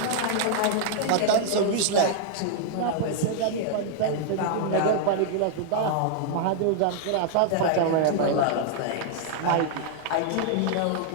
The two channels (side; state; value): both; different; correlation -0.01